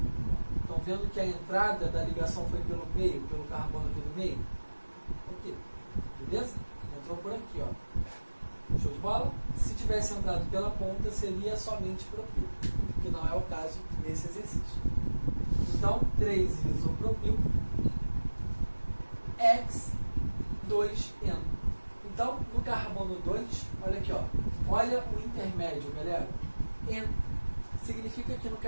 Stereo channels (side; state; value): both; inverted; correlation -1.00